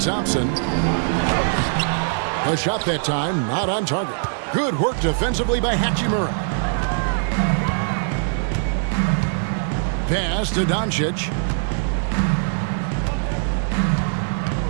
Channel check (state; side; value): silent; left; digital silence